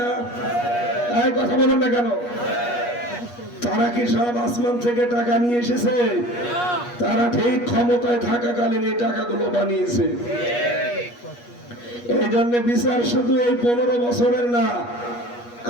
এই কথা বলেন না কেন? তারা কি সব আসমান থেকে টাকা নিয়ে এসেছে? তারা ঠিক ক্ষমতায় থাকাকালীন এই টাকাগুলো বানিয়েছে। এই জন্য বিচার শুধু এই 15 বছরের না,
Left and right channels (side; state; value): right; late; 8.4 ms